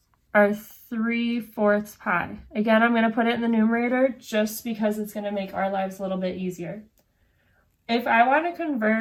our 3/4 pi. Again, I'm going to put it in the numerator just because it's going to make our lives a little bit easier. If I want to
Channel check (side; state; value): both; identical; correlation 1.00